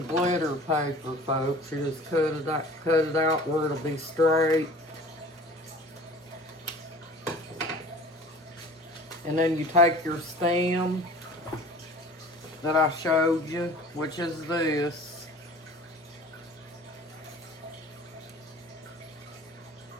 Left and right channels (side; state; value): both; normal; correlation 0.44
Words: glitter paper, folks. You just cut it out where it'll be straight. And then you take your stem that I showed you, which is this.